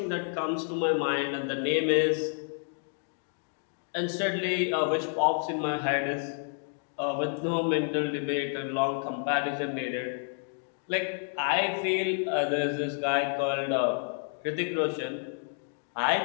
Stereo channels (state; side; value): silent; right; 58 dB below the other